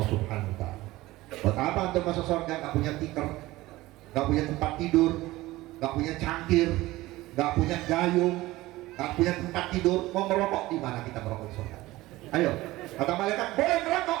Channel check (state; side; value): quieter; left; 18.2 dB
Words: Subhanahu wa Ta'ala. Buat apa untuk masuk surga? Gak punya tikar, gak punya tempat tidur, nggak punya cangkir, nggak punya gayung, nggak punya tempat tidur, mau merokok di mana kita merokok di surga? Ayo, kata malaikat boleh merokok,